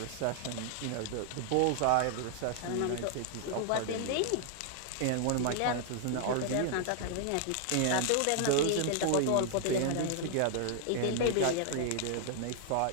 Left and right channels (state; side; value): different; both; correlation 0.00